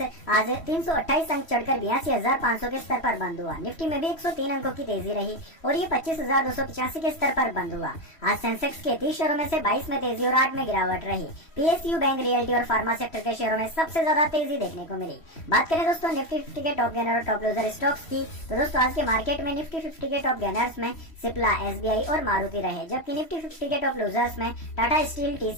आज 328 अंक चढ़कर 82,500 के स्तर पर बंद हुआ। निफ्टी में भी 103 अंकों की तेजी रही और ये 25,285 के स्तर पर बंद हुआ। आज सेंसेक्स के 30 शेयरों में से 22 में तेजी और 8 में गिरावट रही। पीएसयू, बैंक, रियल्टी और फार्मा सेक्टर के शेयरों में सबसे ज्यादा तेजी देखने को मिली। बात करें दोस्तों निफ्टी 50 के टॉप गेनर और टॉप लूजर स्टॉक्स की, तो दोस्तों आज के मार्केट में निफ्टी 50 के टॉप गेनर्स में सिप्ला, एसबीआई और मारुति रहे, जबकि निफ्टी 50 के टॉप लूजर्स में टाटा स्टील,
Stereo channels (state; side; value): late; right; 3.1 ms